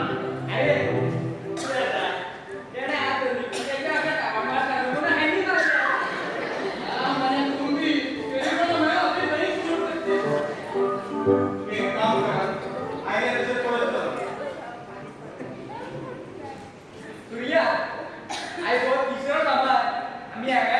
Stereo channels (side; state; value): both; identical; correlation 1.00